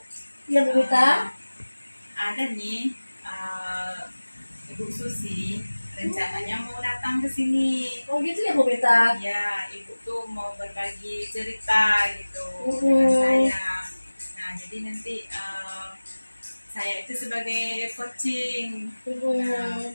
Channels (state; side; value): inverted; both; correlation -1.00